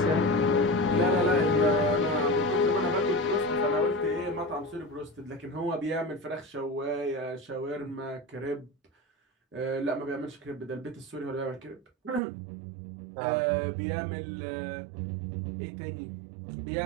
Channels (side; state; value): left; drops out; at 12.2 s